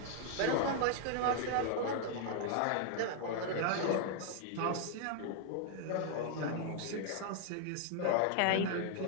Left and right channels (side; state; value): both; different; correlation 0.00